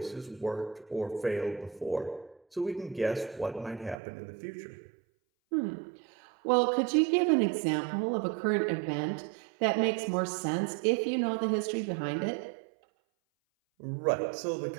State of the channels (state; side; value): drops out; left; at 4.0 s